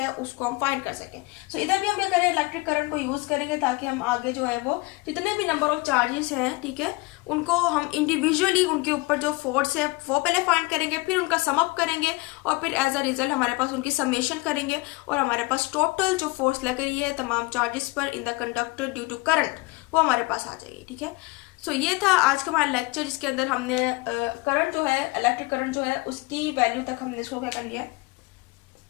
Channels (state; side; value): quieter; right; 24.1 dB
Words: उसको हम फाइंड कर सकें। सो इधर भी हम क्या करें, इलेक्ट्रिक करंट को यूज करेंगे ताकि हम आगे जो है वो जितने भी नंबर ऑफ चार्जेस हैं, ठीक है, उनको हम इंडिविजुअली उनके ऊपर जो फोर्स है वो पहले फाइंड करेंगे, फिर उनका सम अप करेंगे और फिर एज अ रिजल्ट हमारे पास उनकी समेशन करेंगे और हमारे पास टोटल जो फोर्स लग रही है तमाम चार्जेस पर in the conductor due to current वो हमारे पास आ जाएगी। ठीक है, सो ये था आज का हमारा लेक्चर, जिसके अंदर हमने करंट जो है, इलेक्ट्रिक करंट जो है उसकी वैल्यू तक हमने इसको क्या कर लिया,